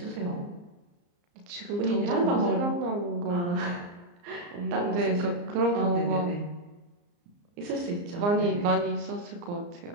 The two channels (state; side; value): late; left; 34 ms